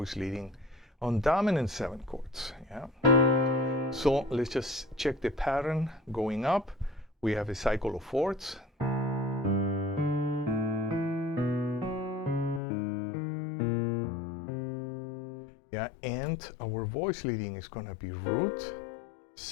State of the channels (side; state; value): right; drops out; at 12.6 s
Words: leading on dominant 7 chords. Yeah. So let's just check the pattern going up. We have a cycle of 4ths. Yeah, and our voice leading is going to be root,